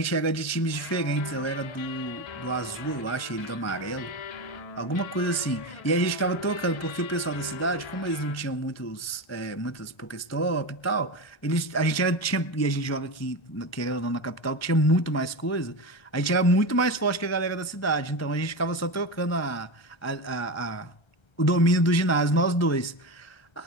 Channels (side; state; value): right; late; 1.3 ms